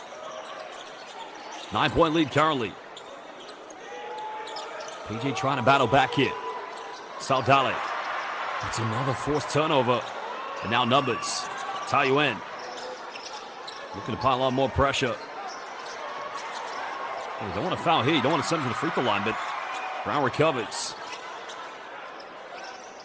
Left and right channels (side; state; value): both; identical; correlation 1.00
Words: 9-point lead currently. PJ trying to battle back here. Saldale. It's another forced turnover. And now numbers. Taoyuan. Looking to pile on more pressure. Well, they want to foul here. You don't want to send him to the free throw line, but Brown recovers.